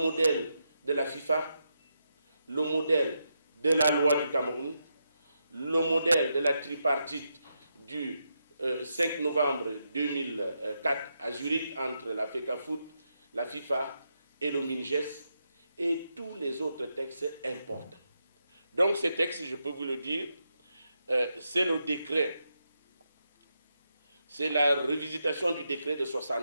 de la FIFA, le modèle de la loi du Cameroun, le modèle de la tripartite du 5 novembre 2004 à Zurich entre la FECAFOOT, la FIFA et le MINGES, et tous les autres textes importants. Donc ces textes, je peux vous le dire, c'est le décret, c'est la revisitation du décret de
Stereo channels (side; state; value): both; inverted; correlation -0.84